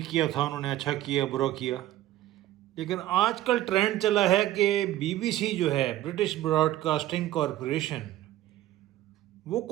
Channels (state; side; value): quieter; left; 14.4 dB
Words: تھا انہوں نے اچھا کیا برا کیا، لیکن آج کل ٹرینڈ چلا ہے کہ بی بی سی جو ہے، برٹش براڈ کاسٹنگ کارپوریشن، وہ